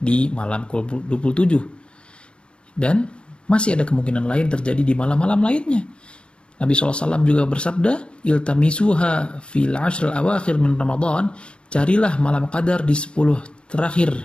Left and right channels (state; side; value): late; right; 0.054 ms